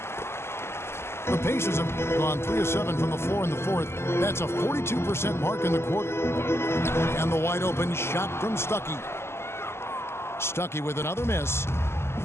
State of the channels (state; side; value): late; right; 0.12 ms